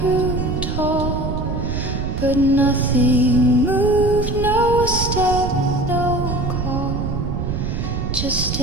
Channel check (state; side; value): noise; right; rumble, 3 dB below the sound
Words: tall, but nothing moved, no step, no call, just